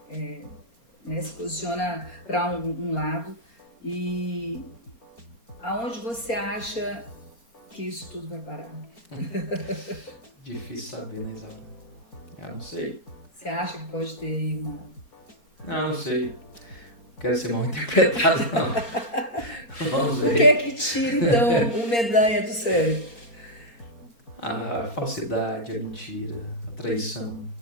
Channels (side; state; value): right; late; 4.3 ms